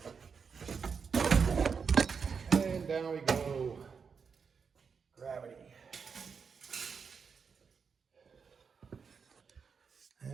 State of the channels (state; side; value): quieter; left; 5.9 dB